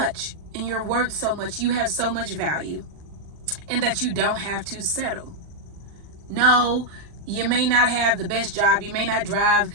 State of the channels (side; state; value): left; late; 40 ms